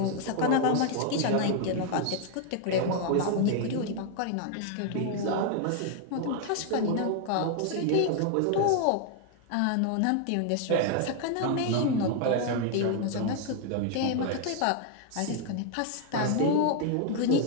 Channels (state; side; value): different; both; correlation 0.00